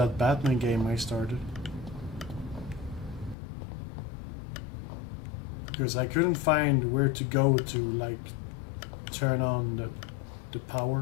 Batman game I started. Because I couldn't find where to go to, like, turn on the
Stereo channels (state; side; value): drops out; right; at 3.4 s